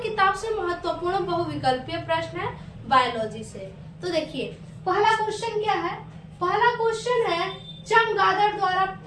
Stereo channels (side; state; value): both; identical; correlation 1.00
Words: किताब से महत्वपूर्ण बहुविकल्पीय प्रश्न है बायोलॉजी से। तो देखिए, पहला क्वेश्चन क्या है। पहला क्वेश्चन है चमगादड़ द्वारा